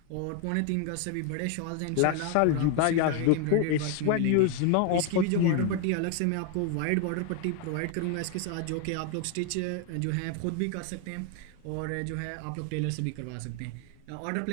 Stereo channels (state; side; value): different; both; correlation 0.01